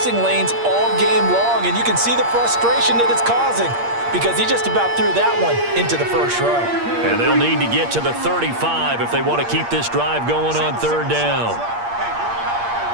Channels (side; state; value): left; late; 8.6 ms